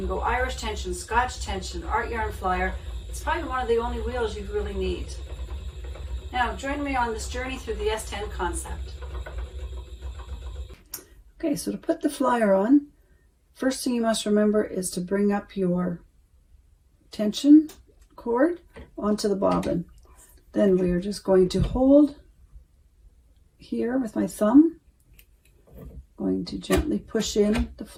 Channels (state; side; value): identical; both; correlation 1.00